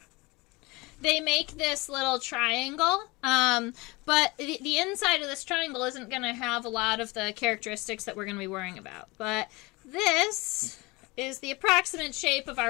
They make this little triangle, but the inside of this triangle isn't going to have a lot of the characteristics that we're going to be worrying about. But this is the approximate shape of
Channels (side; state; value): right; quieter; 24.0 dB